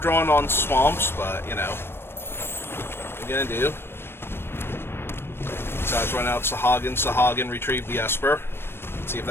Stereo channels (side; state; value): right; late; 0.11 ms